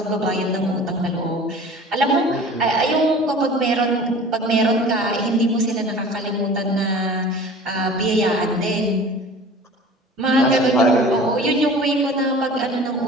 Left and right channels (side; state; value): both; normal; correlation 0.42